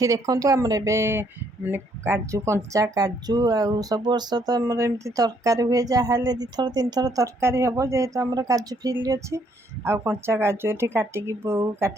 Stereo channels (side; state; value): both; normal; correlation 0.69